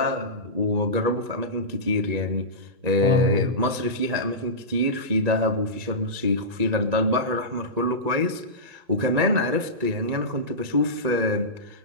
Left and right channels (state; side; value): late; left; 1.9 ms